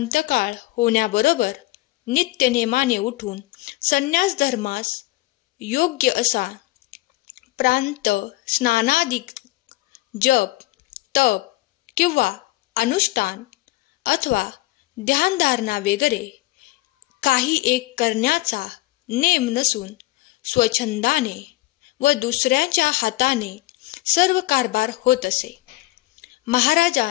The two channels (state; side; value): quieter; right; 18.8 dB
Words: होण्याबरोबर नित्यनेमाने उठून संन्यास धर्मास योग्य असा प्रांत स्नानादी जप तप किंवा अनुष्ठान अथवा ध्यानधारणा वगैरे काही एक करण्याचा नेम नसून स्वच्छंदाने व दुसऱ्याच्या हाताने सर्व कारभार होत असे.